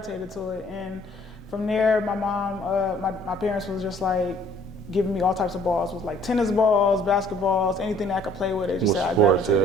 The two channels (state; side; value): normal; both; correlation 0.57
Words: to it. And from there, my mom, my parents was just like, giving me all types of balls. It was like tennis balls, basketballs, anything that I could play with. They just said I